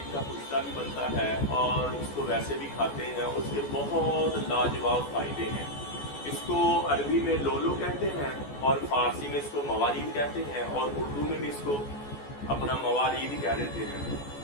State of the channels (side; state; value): right; late; 14 ms